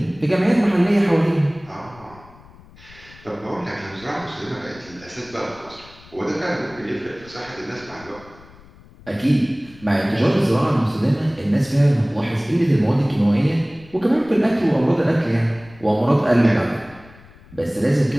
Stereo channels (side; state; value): left; noise; rumble, 23 dB below the sound